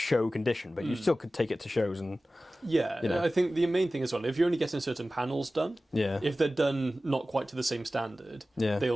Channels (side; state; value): both; normal; correlation 0.96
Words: condition, but you still could take it to shows and I think the main thing as well, if you're only getting certain panels done, if they're done not quite to the same standard,